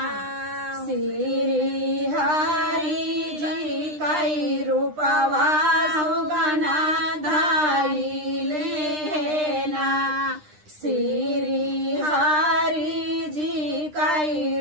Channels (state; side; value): late; left; 9.9 ms